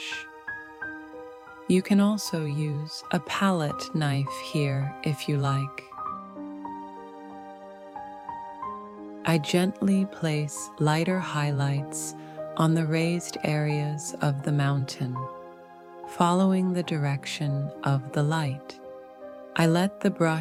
You can also use a palette knife here if you like. I gently place lighter highlights on the raised areas of the mountain, following the direction of the light. I let the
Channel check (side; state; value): both; identical; correlation 1.00